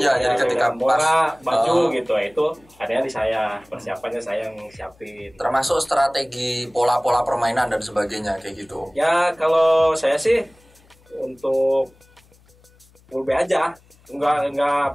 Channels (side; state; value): left; noise; hum, 30 dB below the sound